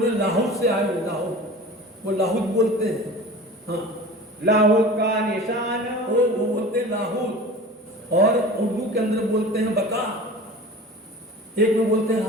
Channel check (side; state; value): both; normal; correlation 0.37